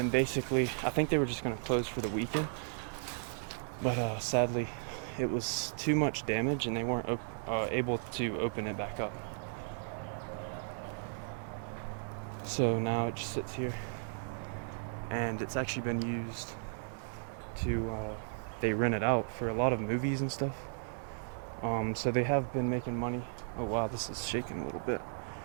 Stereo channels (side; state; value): left; silent; digital silence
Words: basically, I think they were just going to close for the weekend, but sadly, it was too much damage and they weren't able to open it back up. So now it just sits here, and it's actually been used to, they rent it out for a lot of movies and stuff. So they have been making money. Oh wow, this is shaking a little bit.